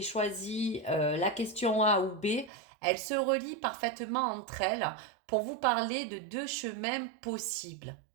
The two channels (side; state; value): left; drops out; at 2.5 s